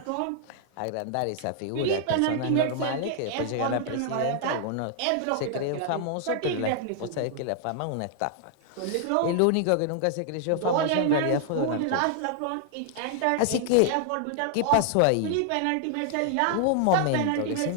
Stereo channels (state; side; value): different; both; correlation 0.00